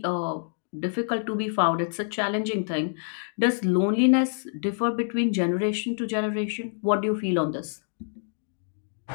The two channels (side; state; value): right; silent; digital silence